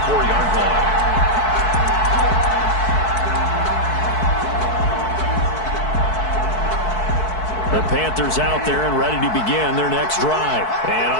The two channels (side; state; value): right; late; 4.6 ms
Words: line. The Panthers out there and ready to begin their next drive. And